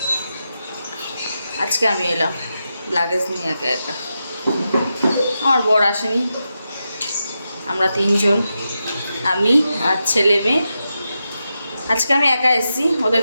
আজকে আমি এলাম লাগেজ নিয়ে একা একা। আমার বর আসেনি, আমরা 3 জন, আমি আর ছেলে মেয়ে। আজকে আমি একা এসেছি,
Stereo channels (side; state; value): both; inverted; correlation -0.88